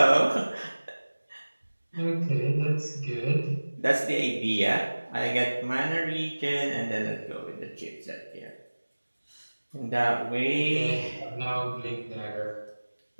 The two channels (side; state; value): both; inverted; correlation -1.00